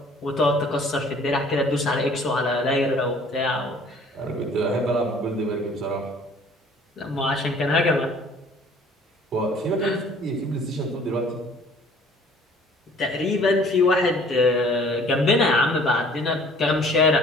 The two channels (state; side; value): normal; both; correlation 0.53